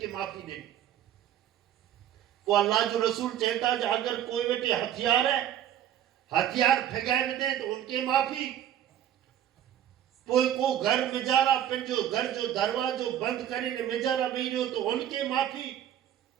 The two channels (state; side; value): quieter; left; 11.0 dB